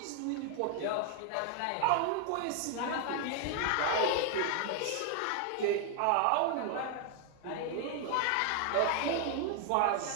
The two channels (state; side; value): different; both; correlation 0.00